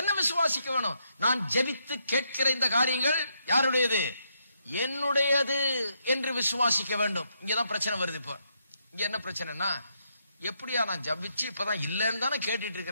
விசுவாசிக்க வேணும்? நான் ஜெபித்து கேட்கிற இந்த காரியங்கள் யாருடையது? என்னுடையது என்று விசுவாசிக்க வேண்டும். இங்கதான் பிரச்சனை வருது. இப்ப இங்க என்ன பிரச்சனைனா, எப்படியா நான் ஜபிச்சு இப்பதான் இல்லன்னு தானே கேட்டுட்டு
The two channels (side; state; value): both; inverted; correlation -0.78